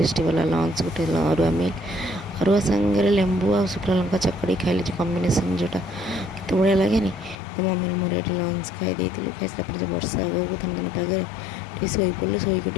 वाला लंच गोटे अरुआ मिल अरुआ सांगे लेंबू आ शुक्ला लंका चकड़ी खाइले जो कम्बिनेसन जोटा केत बढ़िया लगे तो मम्मी मोर ये लंच खाई खाई सारा वर्षा आगे थन थन पागे शोई पड़ू शोक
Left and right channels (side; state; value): right; drops out; at 7.4 s